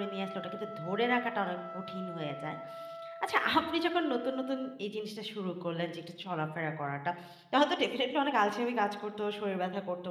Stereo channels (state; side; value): identical; both; correlation 1.00